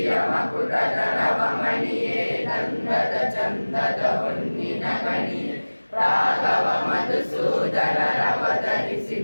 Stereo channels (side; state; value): both; inverted; correlation -1.00